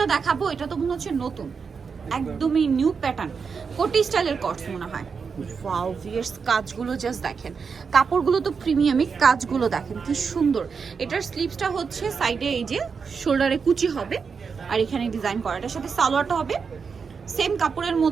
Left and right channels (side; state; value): left; quieter; 5.6 dB